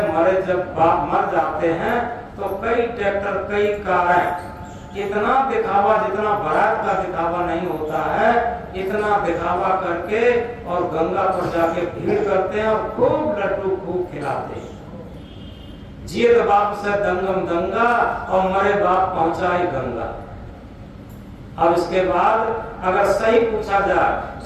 मरे जब बाप मर जाते हैं तो कई ट्रैक्टर, कई कारें, इतना दिखावा, जितना बारात का दिखावा नहीं होता है, इतना दिखावा करके और गंगा पर जाके भीड़ करते हैं और खूब लड्डू खूब खिलाते हैं। जियत बाप से दंगम दंगा और मरे बाप पहुंचाए गंगा। अब इसके बाद अगर सही पूछा जाए,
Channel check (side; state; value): both; identical; correlation 1.00